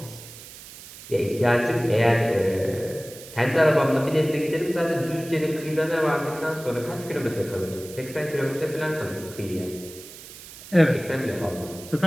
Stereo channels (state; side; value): noise; right; hiss, 16 dB below the sound